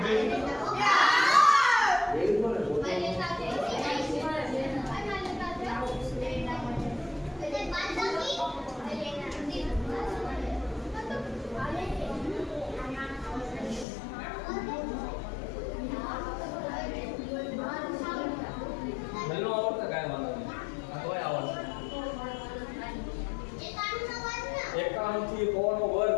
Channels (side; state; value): right; drops out; at 13.9 s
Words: નલ્લો આવડતા કાય વાંધો નહીં તોય આવડે 51 થી કોનો